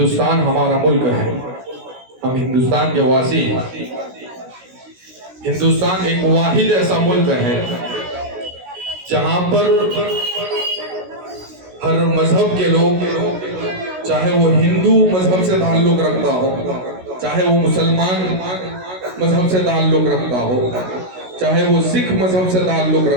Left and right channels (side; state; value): left; late; 16 ms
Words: ہمارا ملک ہے، ہم ہندوستان کے واسی ہیں۔ ہندوستان ایک واحد ایسا ملک ہے جہاں پر ہر مذہب کے لوگ، چاہے وہ ہندو مذہب سے تعلق رکھتا ہو، چاہے وہ مسلمان مذہب سے تعلق رکھتا ہو، چاہے وہ سکھ مذہب سے تعلق